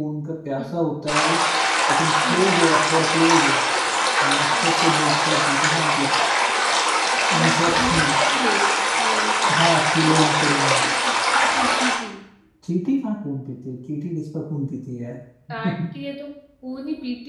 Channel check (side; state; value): both; identical; correlation 1.00